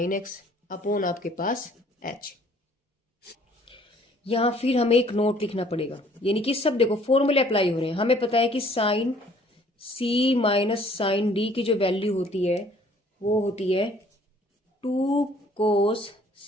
एक्स अपॉन आपके पास एच। यहां फिर हमें एक नोट लिखना पड़ेगा, यानी कि सब देखो फॉर्मूले अप्लाई हो रहे हैं। हमें पता है कि sign C minus sign D की जो वैल्यू होती है वो होती है 2 कोस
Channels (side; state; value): both; normal; correlation 0.58